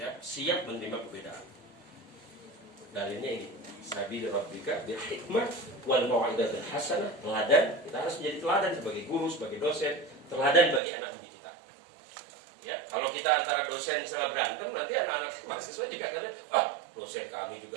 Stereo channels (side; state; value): left; drops out; at 10.8 s